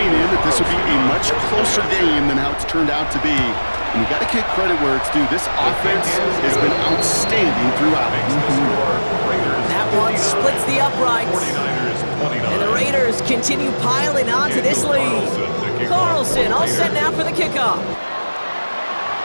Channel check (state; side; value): inverted; both; correlation -1.00